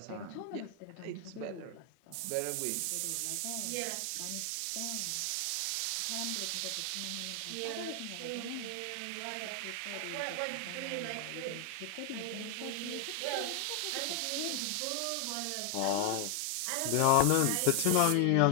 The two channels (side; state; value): both; different; correlation 0.00